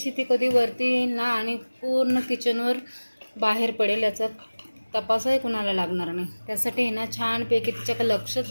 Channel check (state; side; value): inverted; both; correlation -1.00